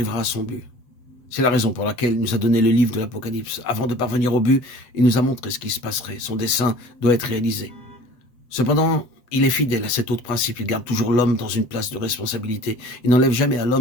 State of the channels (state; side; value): late; right; 7.8 ms